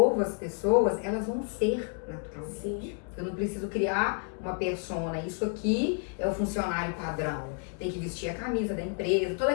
as pessoas, elas vão ser naturalmente. Sim. Eu não preciso criar uma persona. Isso aqui é o funcionário padrão. Tem que vestir a camisa da empresa, todo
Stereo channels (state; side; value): quieter; right; 39.5 dB